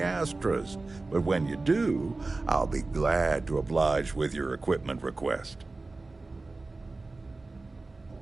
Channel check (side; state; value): left; quieter; 3.4 dB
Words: But when you do, I'll be glad to oblige with your equipment request.